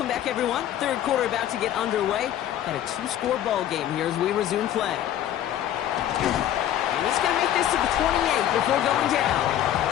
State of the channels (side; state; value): right; quieter; 11.6 dB